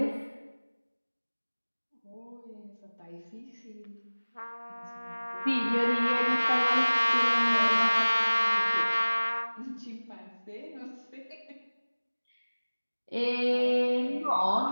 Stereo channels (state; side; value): inverted; both; correlation -1.00